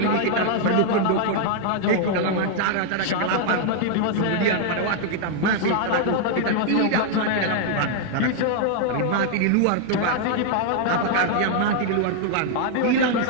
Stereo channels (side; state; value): both; different; correlation 0.00